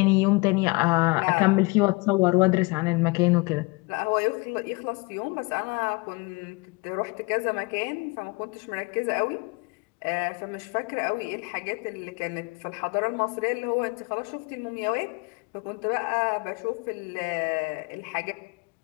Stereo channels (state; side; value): quieter; right; 27.2 dB